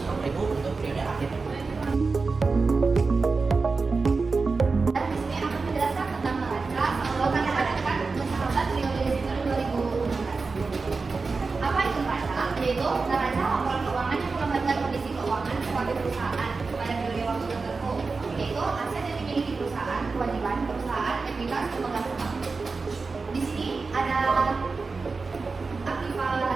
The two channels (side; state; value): left; quieter; 4.2 dB